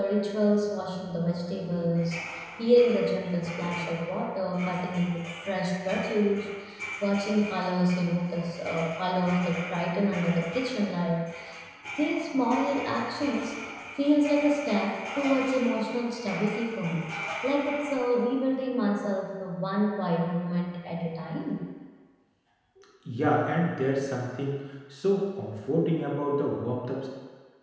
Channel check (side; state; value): both; identical; correlation 1.00